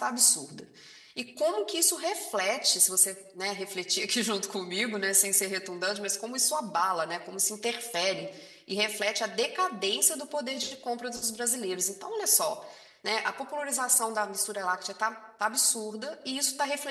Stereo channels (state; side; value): identical; both; correlation 1.00